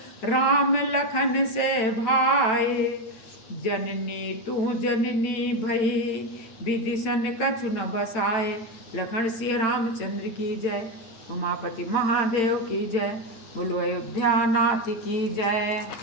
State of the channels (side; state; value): right; late; 8.9 ms